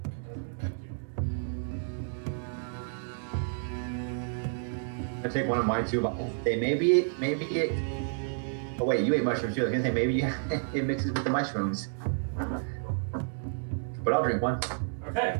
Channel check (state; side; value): silent; left; digital silence